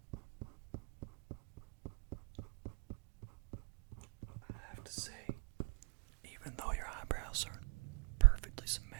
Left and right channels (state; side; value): quieter; left; 32.0 dB